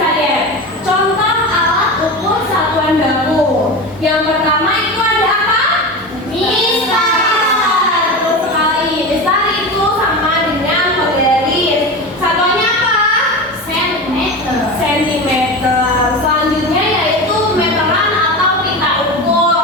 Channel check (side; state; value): both; normal; correlation 0.25